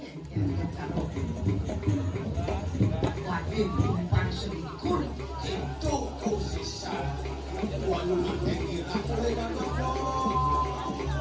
wajib timbang selikur itu kusisa. Walu natengi itu kira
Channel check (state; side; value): identical; both; correlation 1.00